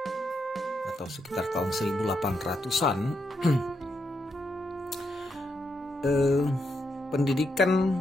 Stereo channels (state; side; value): normal; both; correlation 0.81